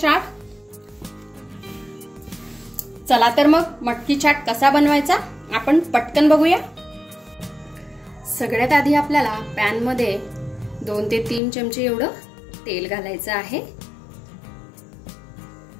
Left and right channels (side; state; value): right; drops out; at 11.4 s